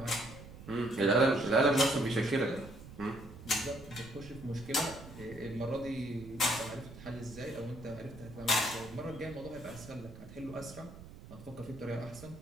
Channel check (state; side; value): noise; right; rumble, 15 dB below the sound